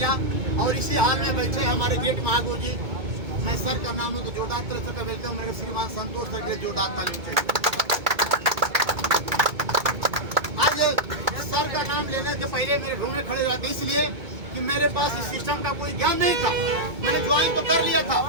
और इसी हाल में बैठे हमारे ग्रेट महागुरु जी, मैं सर का नाम है तो जोरदार तरह से वेलकम मेरे श्रीमान संतोष सर के जोरदार ताली चाहिए। आज सर का नाम लेने से पहले मेरे ढूंढने खड़े जाते, इसलिए कि मेरे पास इस सिस्टम का कोई ज्ञान नहीं था। मैंने ज्वाइन तो कर लिया था,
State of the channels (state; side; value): late; left; 2.2 ms